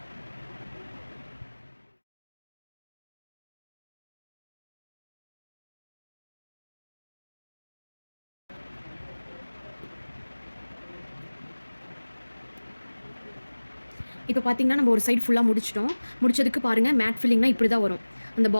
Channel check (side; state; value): both; inverted; correlation -1.00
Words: இப்போ பார்த்தீங்கன்னா நம்ம ஒரு சைடு ஃபுல்லாக முடிச்சிட்டோம். முடிச்சதுக்கு பாருங்கள், மேட் ஃபில்லிங்னா இப்படி தான் வரும். அந்த